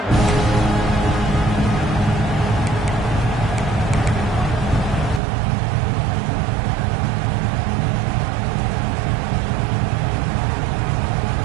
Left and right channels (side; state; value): left; drops out; at 5.2 s